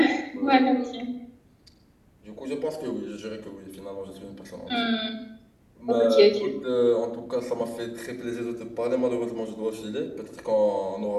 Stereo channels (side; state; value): both; identical; correlation 1.00